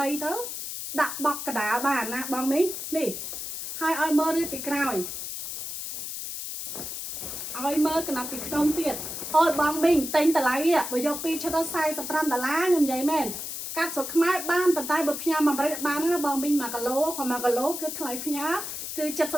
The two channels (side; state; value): left; noise; hiss, 6 dB below the sound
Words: ទៅដាក់បកកដាលបានណាបងមីងនេះហើយឲ្យមើលរៀបពីក្រោយឲ្យមើលកណ្ដាប់ពីក្នុងទៀតអូយបងមីងទិញតម្លៃបើយក2ឈុតដល់$45ខ្ញុំនិយាយមែន កាត់ស្រុកខ្មែរបានប៉ុន្តែបើផ្ញើមកអាមេរិកបានណាបងមីង1គីឡូគាត់1គីឡូគឺថ្លៃផ្ញើគឺ